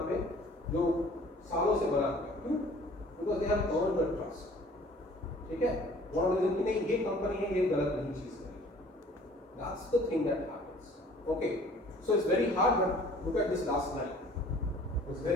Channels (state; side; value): normal; both; correlation 0.52